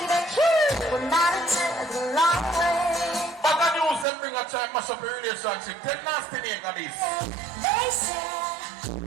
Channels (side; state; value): left; drops out; at 4.0 s